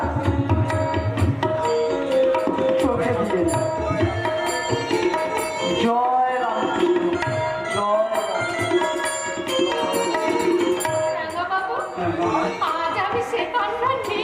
চোখে দিয়ে না। জয় রামকৃষ্ণ, জয় রাঙা বাবু, আজ আমি সে পান্না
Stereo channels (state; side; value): identical; both; correlation 1.00